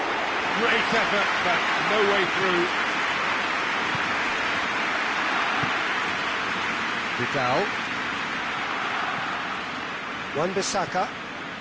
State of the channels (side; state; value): both; identical; correlation 1.00